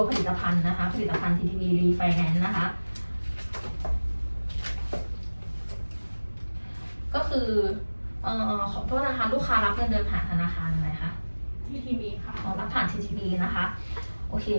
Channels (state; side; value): inverted; both; correlation -1.00